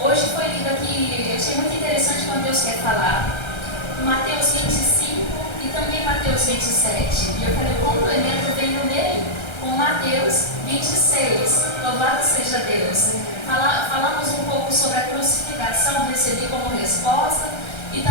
Hoje foi lido aqui, eu achei muito interessante quando Deus quer falar. Mateus 25 e também Mateus 27. E eu falei, o complemento veio nele com Mateus 26. Louvado seja Deus. Falamos um pouco sobre a crucificação, recebi como resposta. E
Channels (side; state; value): right; late; 1.3 ms